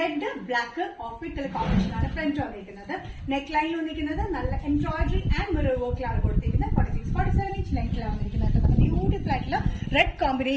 black off white colour combination ആണ് ഫ്രണ്ട് വന്നിരിക്കുന്നത്. നെക്ക് ലൈനിൽ വന്നിരിക്കുന്നത് നല്ല എംബ്രോയിഡറി ആൻഡ് മിറർ വർക്കിലാണ് കൊടുത്തിരിക്കുന്നത്. 46-47 ഇഞ്ച് ലെങ്ത്തിലാണ് വന്നിരിക്കുന്നത്. ബ്യൂട്ടിഫുൾ ആയിട്ടുള്ള റെഡ്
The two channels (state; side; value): identical; both; correlation 1.00